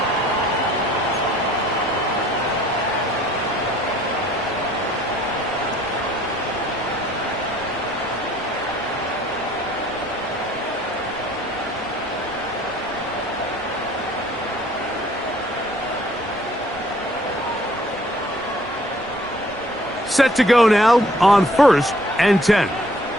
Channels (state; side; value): noise; right; rumble, 21 dB below the sound